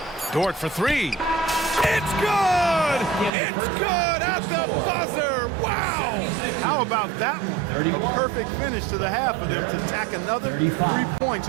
Dort for three. It's good! It's good at the buzzer! Wow! How about that one? A perfect finish to the half for them to tack another 3 points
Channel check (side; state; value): left; drops out; at 3.3 s